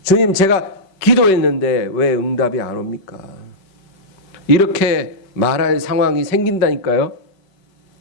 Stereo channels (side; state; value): right; late; 5.2 ms